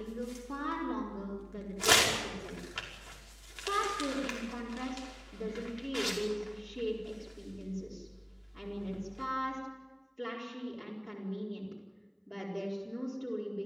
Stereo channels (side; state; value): both; identical; correlation 1.00